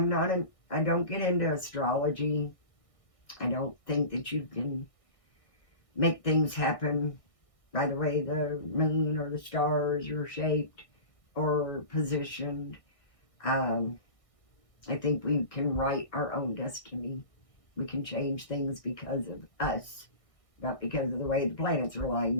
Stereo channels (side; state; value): right; late; 1.6 ms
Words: don't get into astrology. I don't think that you can make things happen by the way the moon or the stars are shaped or positioned. I think we can write our own destiny. We can change things because of us, not because of the way the planets are